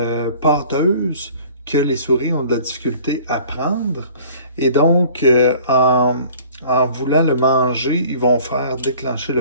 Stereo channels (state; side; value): inverted; both; correlation -0.50